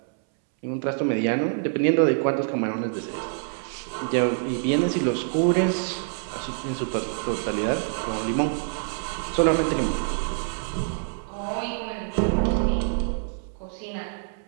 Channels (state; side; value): silent; left; 61 dB below the other